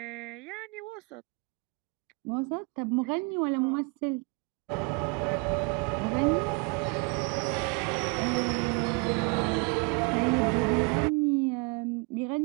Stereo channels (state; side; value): quieter; left; 31.7 dB